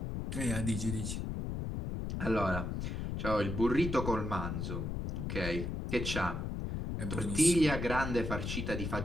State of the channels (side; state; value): left; noise; rumble, 3 dB below the sound